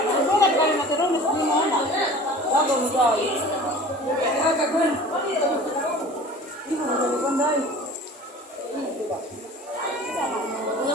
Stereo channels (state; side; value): normal; both; correlation 0.42